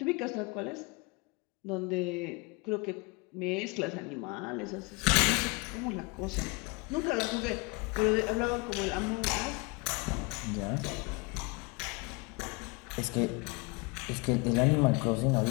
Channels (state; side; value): quieter; right; 28.1 dB